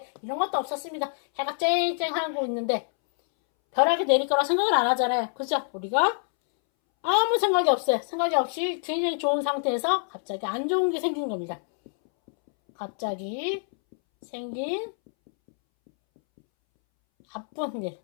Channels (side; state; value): right; silent; 61 dB below the other